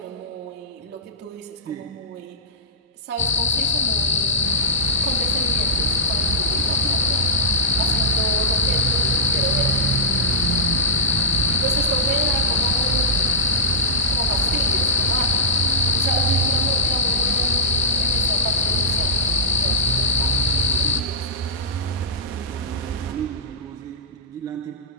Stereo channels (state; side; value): normal; both; correlation -0.14